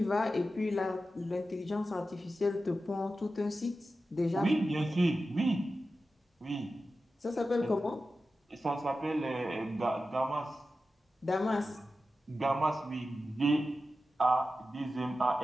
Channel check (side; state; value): both; normal; correlation 0.92